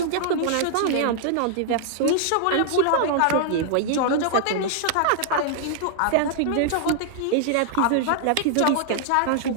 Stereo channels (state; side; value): different; both; correlation -0.01